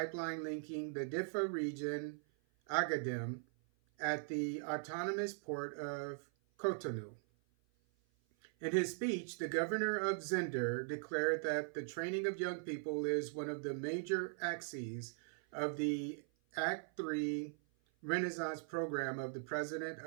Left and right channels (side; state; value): left; silent; 51 dB below the other